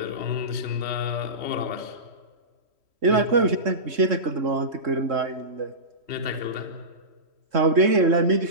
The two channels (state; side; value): late; left; 3.1 ms